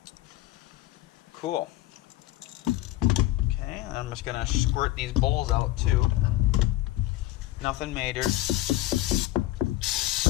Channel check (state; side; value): quieter; right; 16.2 dB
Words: Cool. Okay, I'm just gonna squirt these bowls out too. Nothing major.